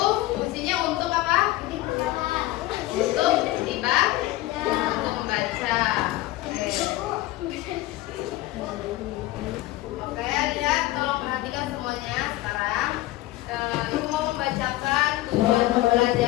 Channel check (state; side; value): quieter; right; 17.3 dB